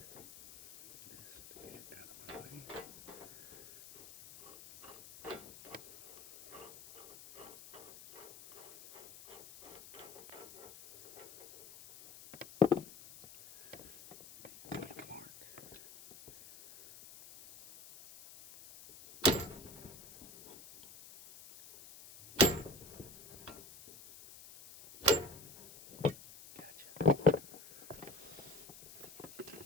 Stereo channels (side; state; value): left; noise; hiss, 17 dB below the sound